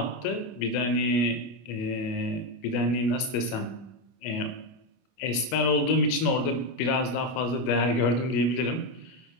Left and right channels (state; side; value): late; right; 25 ms